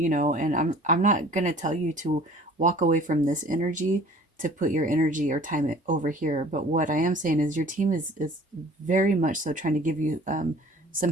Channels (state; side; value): normal; both; correlation 0.49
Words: know, and I'm not gonna tell you to walk away from this energy to put your energy or time it over here. But what I am saying is your team is very much so trying to give you